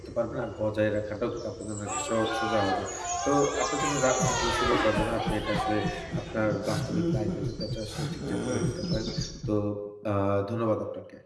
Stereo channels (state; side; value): identical; both; correlation 1.00